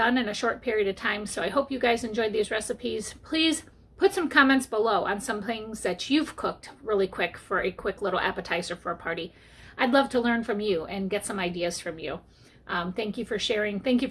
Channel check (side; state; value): both; identical; correlation 1.00